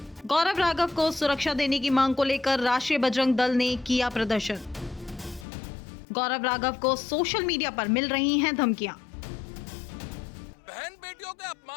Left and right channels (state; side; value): drops out; right; at 5.5 s